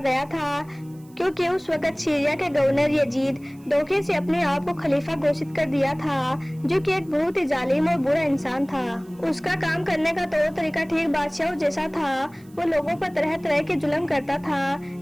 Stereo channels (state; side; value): noise; right; hiss, 29 dB below the sound